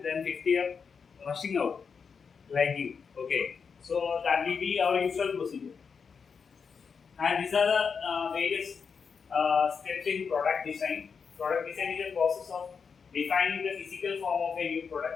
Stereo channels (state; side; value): quieter; right; 5.9 dB